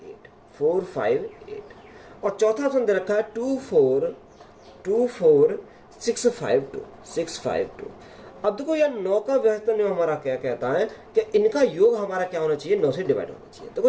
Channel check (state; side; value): identical; both; correlation 1.00